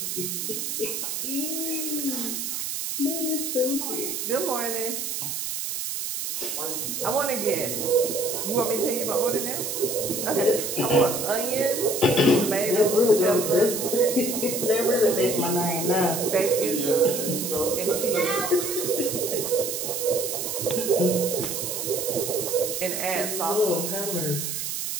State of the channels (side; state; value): right; noise; hiss, 3 dB below the sound